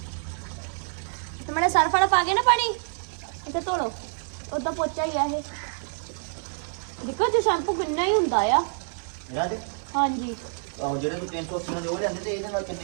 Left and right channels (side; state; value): left; silent; digital silence